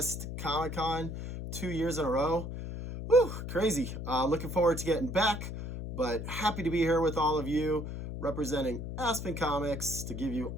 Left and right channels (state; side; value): noise; left; hum, 6 dB below the sound